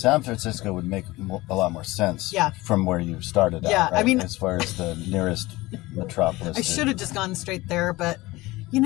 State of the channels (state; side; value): quieter; right; 19.9 dB